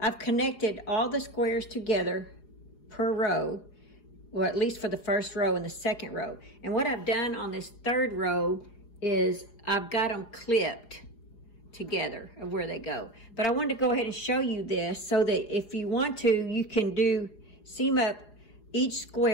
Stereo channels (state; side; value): late; right; 4.8 ms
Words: connected all the squares together per row, well, at least for the first row and the second row. And what I've done on this 3rd row is I've got them clipped together of where they go. But I wanted to go ahead and show you this so that if you want to, you can seam up each